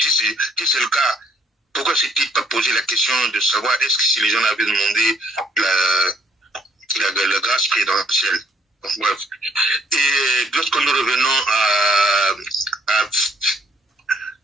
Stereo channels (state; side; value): normal; both; correlation 0.64